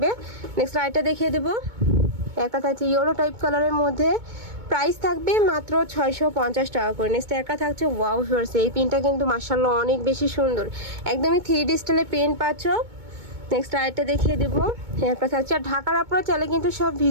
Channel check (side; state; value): left; late; 2.2 ms